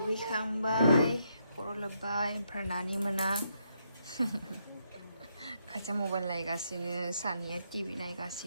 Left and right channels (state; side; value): inverted; both; correlation -0.77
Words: खर' लोब्बाय ओमफ्राय नानि मोना खाथिया मबाइल नायगासिनो सानैया टिभि